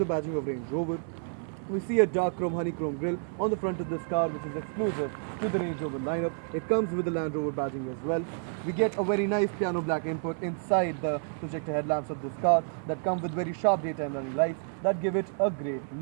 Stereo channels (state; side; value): silent; left; 58 dB below the other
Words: badging of Range Rover. We see a dark chrome honeycomb grille on the front of this car, which is exclusive to the Range Rover lineup. It comes with the Land Rover badging as well. We get a very nice piano black input inside the projector headlamps of this car that come with very sharp daytime running lights that give it a great